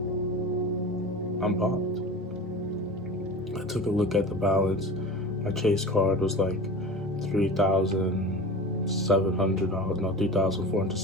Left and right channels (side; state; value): both; normal; correlation 0.34